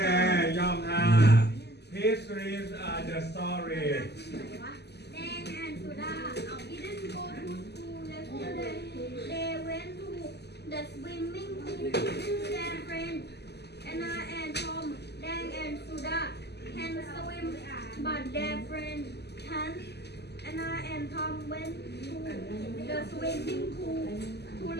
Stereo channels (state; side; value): late; right; 0.49 ms